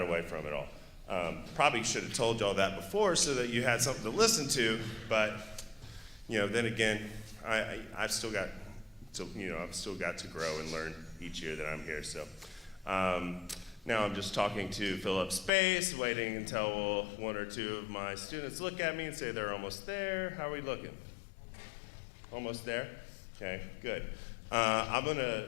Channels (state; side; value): drops out; right; at 15.5 s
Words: away from it all. Probably should have told y'all that before so that you had something to listen to, but then again, I've still got to grow and learn each year that I'm here. So now I'm just talking to fill up space, waiting until one or two of my students look at me and say they're almost there. How are we looking? Almost there? Okay, good. I'm going to